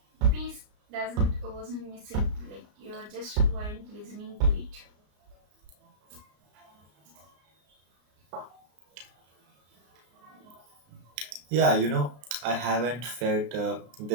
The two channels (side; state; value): left; late; 33 ms